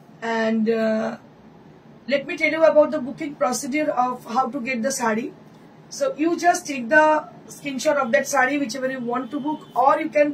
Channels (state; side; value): identical; both; correlation 1.00